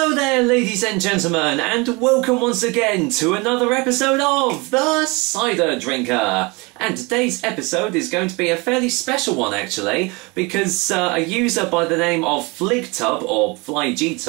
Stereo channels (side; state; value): left; quieter; 26.9 dB